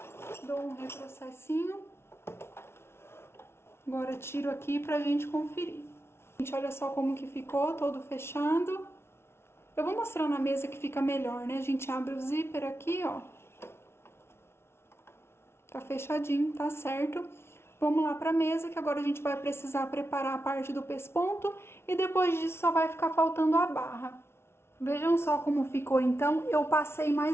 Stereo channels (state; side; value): late; right; 0.12 ms